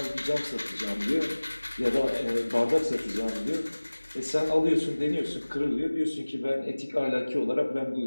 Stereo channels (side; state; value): both; inverted; correlation -1.00